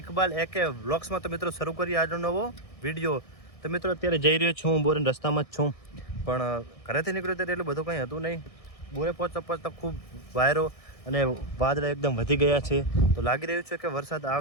ઇકબાલ એકે વ્લોગ્સમાં. તો મિત્રો શરૂ કરીએ આજનો નવો વિડીયો. તો મિત્રો અત્યારે જઈ રહ્યો છું, હું બોરેન રસ્તામાં જ છું, પણ ઘરેથી નીકળ્યો ત્યારે એટલું બધું કંઈ હતું નહીં. બોરે પહોંચતા પહોંચતા ખૂબ વાયરો અને વાદળા એકદમ વધી ગયા છે. તો લાગી રહ્યું છે કે વરસાદ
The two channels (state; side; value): late; right; 1.6 ms